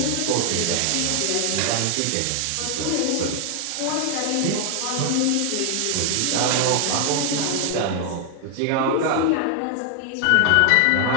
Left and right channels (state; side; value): different; both; correlation 0.00